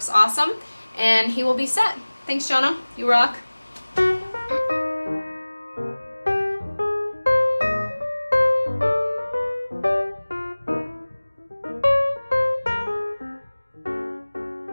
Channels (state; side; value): inverted; both; correlation -1.00